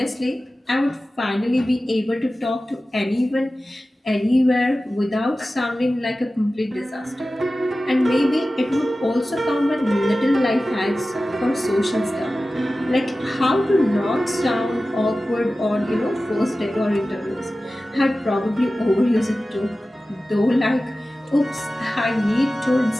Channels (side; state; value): both; normal; correlation 0.95